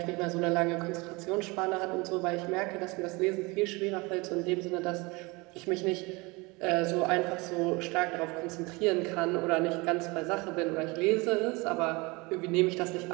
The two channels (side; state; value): left; quieter; 25.6 dB